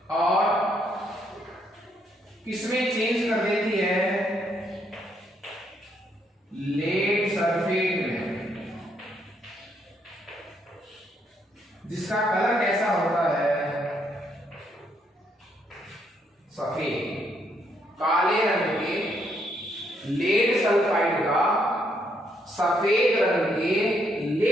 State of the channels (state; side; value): normal; both; correlation 0.73